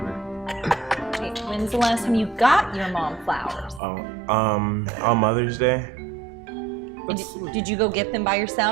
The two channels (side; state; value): left; drops out; at 3.8 s